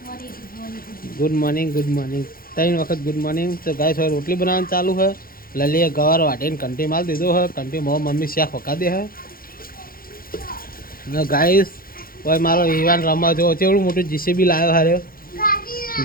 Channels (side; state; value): right; late; 0.42 ms